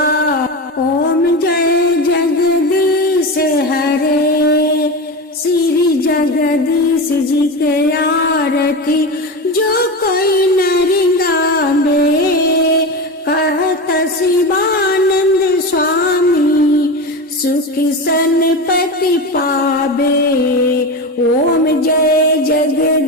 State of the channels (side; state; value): both; normal; correlation 0.22